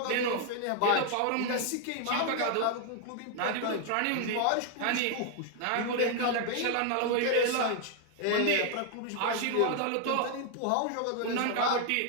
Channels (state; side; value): different; both; correlation 0.01